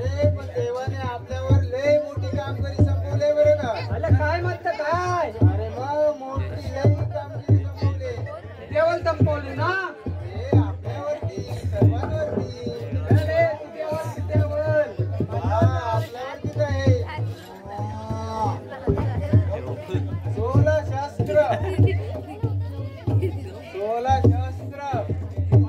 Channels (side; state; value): both; identical; correlation 1.00